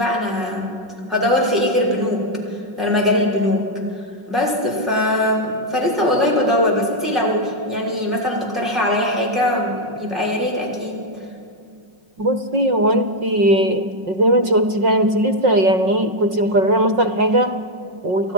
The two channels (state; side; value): late; left; 5.5 ms